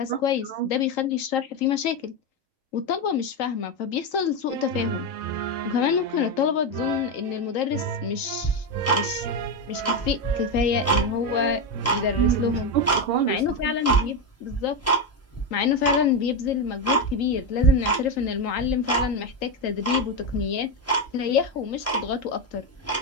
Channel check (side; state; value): both; normal; correlation 0.10